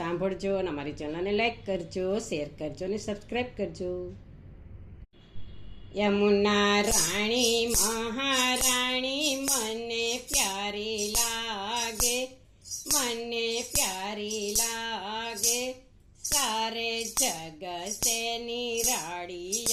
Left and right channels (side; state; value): both; identical; correlation 1.00